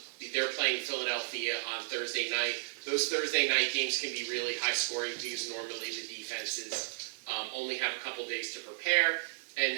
They're playing Philadelphia on Thursday night. Those Thursday night games can be really high scoring because normally the defenses only have a couple days to prepare,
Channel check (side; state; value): left; silent; 55 dB below the other